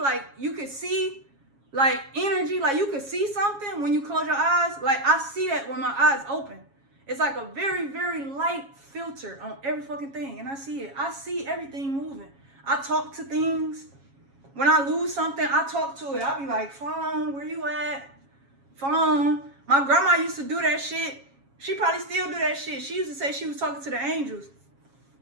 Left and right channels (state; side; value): late; left; 7.3 ms